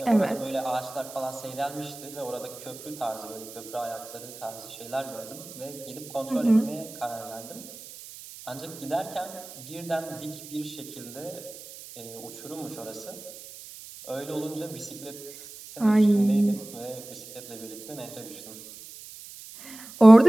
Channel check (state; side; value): noise; right; hiss, 15 dB below the sound